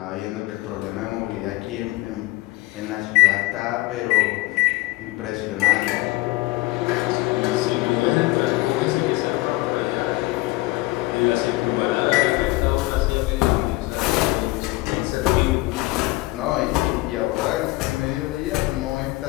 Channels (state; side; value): quieter; right; 20.4 dB